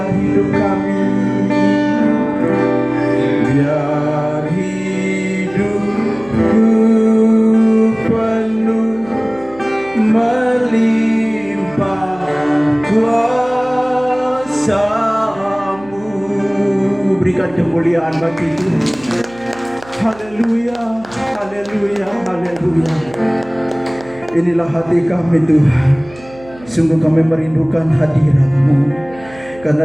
hidup kami, biar hidupku penuh melimpah kuasa-Mu. Berikan kemuliaan bagi Tuhan. Haleluya, haleluya, haleluya. Inilah hati kami Tuhan. Sungguh kami merindukan hadirat-Mu.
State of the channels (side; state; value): right; noise; hum, 21 dB below the sound